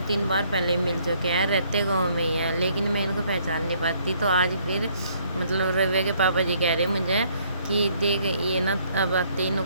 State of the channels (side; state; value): both; inverted; correlation -0.65